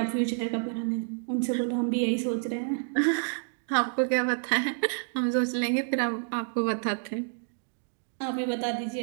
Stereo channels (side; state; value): left; silent; digital silence